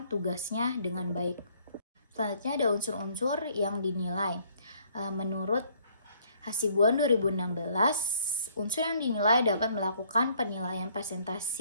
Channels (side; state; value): both; inverted; correlation -0.63